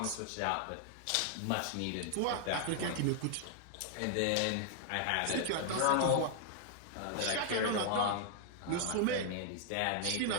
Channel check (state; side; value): different; both; correlation 0.00